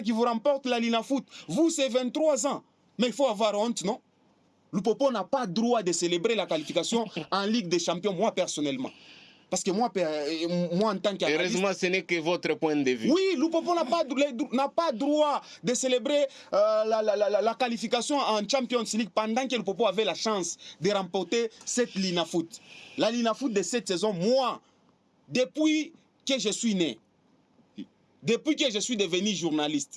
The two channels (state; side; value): identical; both; correlation 1.00